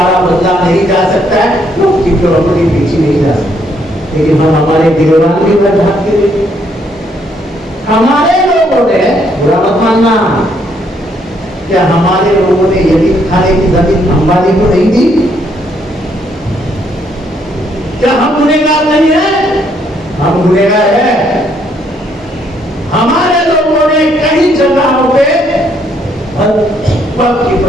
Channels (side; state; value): both; normal; correlation 0.70